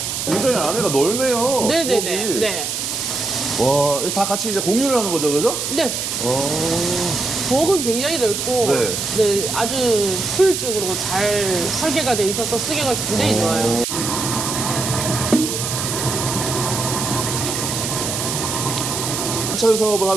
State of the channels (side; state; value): right; noise; hiss, 3 dB below the sound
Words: 굉장히 안에가 넓네요. 네네네. 부엌이. 네. 와, 이거 다 같이 이제 공유를 하는 거죠, 그죠? 네. 부엌은 굉장히 넓고 네. 네, 아주 효율적으로 잘 설계가 돼 있어서 쓰기가 굉장히 좋아요. 반찬 사업을